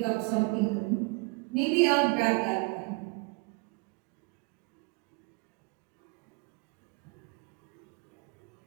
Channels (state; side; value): quieter; left; 29.5 dB